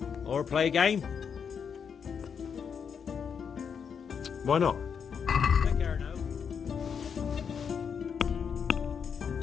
Or play a game? Why not? Take care now.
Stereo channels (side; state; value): right; quieter; 6.9 dB